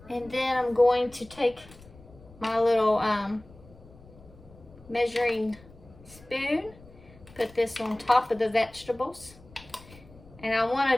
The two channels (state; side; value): noise; left; rumble, 22 dB below the sound